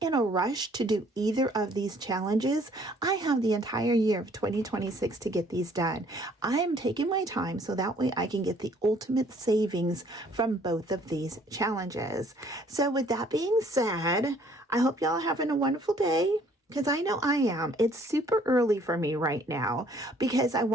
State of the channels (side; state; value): both; normal; correlation 0.60